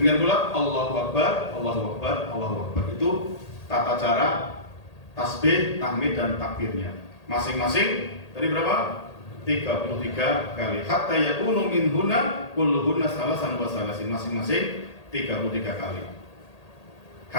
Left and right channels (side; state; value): right; late; 1.8 ms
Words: pula Allahu akbar, Allahu akbar, Allahu akbar. Itu tata cara tasbih, tahmid dan takbirnya. Masing-masing tadi berapa? 33 kali. Hatta yakunu minhunna kulluhunna salasan wa salasin. Masing-masing 33 kali.